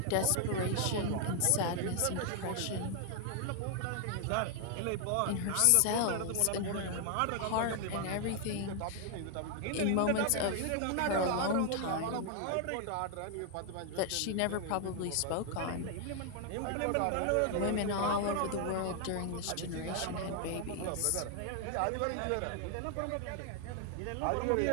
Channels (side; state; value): both; different; correlation 0.00